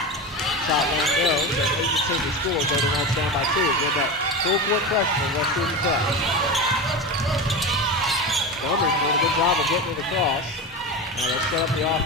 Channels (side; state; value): both; normal; correlation 0.24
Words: Shot won't go, so 8-10 to score. Golden Knights down by 2. With that full court pressure from West Georgia Tech. Montgomery doing a good job of getting it across. Now let's set up the